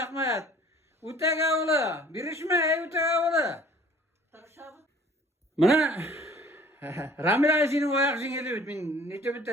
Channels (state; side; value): normal; both; correlation 0.52